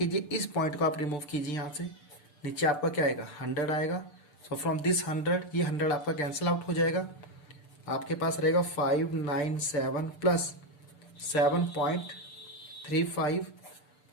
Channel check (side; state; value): right; late; 6.8 ms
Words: इस पॉइंट को आप रिमूव कीजिए यहाँ से, नीचे आपका क्या आएगा, 100 आएगा। सो फ्रॉम दिस 100, ये 100 आपका कैंसिल आउट हो जाएगा। आपके पास रहेगा 597 प्लस 7.35